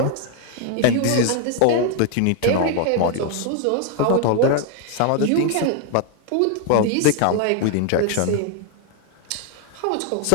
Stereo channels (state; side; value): different; both; correlation 0.00